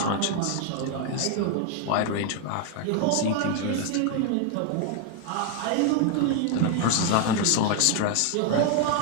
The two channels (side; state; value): both; different; correlation 0.00